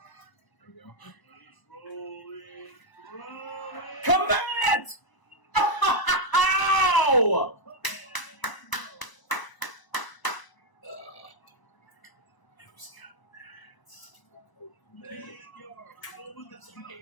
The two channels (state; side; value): late; right; 1.0 ms